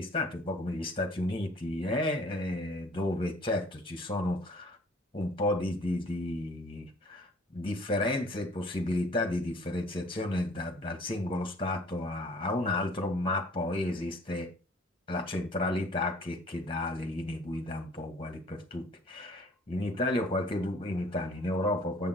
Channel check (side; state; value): both; normal; correlation 0.54